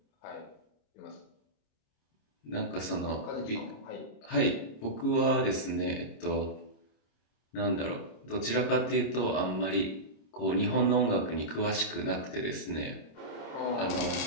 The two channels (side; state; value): right; late; 26 ms